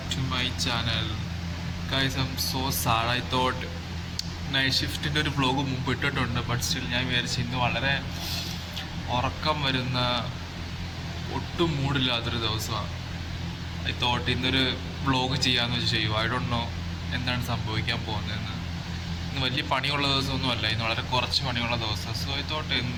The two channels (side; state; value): both; identical; correlation 1.00